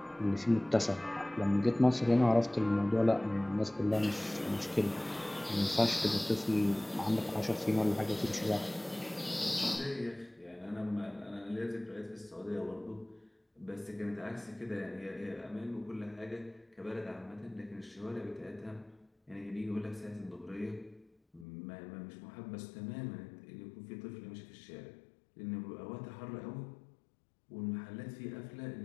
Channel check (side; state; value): right; drops out; at 21.5 s